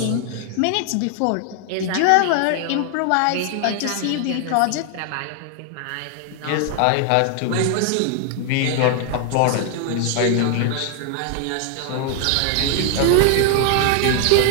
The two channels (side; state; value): both; different; correlation 0.00